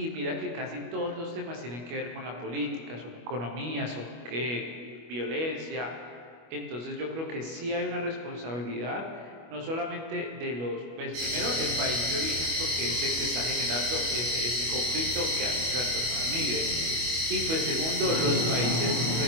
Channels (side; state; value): left; late; 25 ms